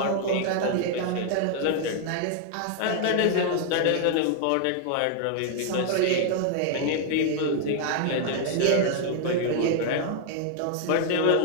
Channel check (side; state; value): both; different; correlation 0.00